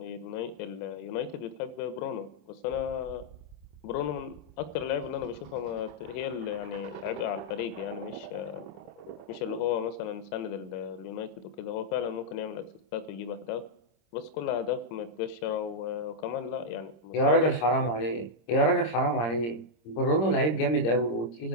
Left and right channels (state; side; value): late; right; 26 ms